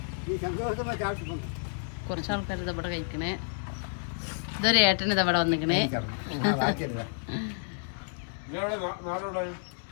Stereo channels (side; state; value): right; silent; 56 dB below the other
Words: കുറച്ച് ആൾക്കാർ ഇതവിടെ കഴിക്കണേ. ഇതൊരു ഏട്ടൻ ഇതവിടെ വന്നിക്കണേ.